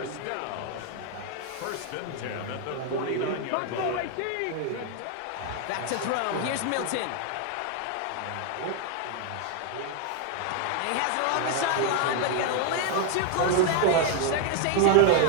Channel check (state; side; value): different; both; correlation 0.00